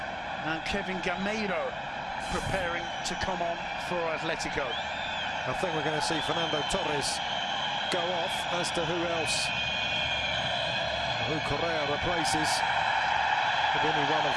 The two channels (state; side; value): identical; both; correlation 1.00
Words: and Kevin Gameiro preparing to come on for Atletico. I think we're going to see Fernando Torres go off, as to who else, who Correa replaces. Could be any one of